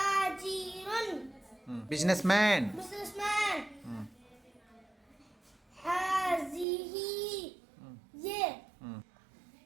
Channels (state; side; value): drops out; left; at 6.7 s